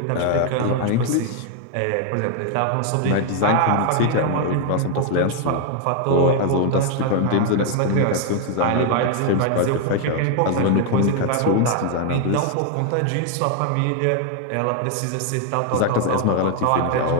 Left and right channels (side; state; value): both; different; correlation 0.00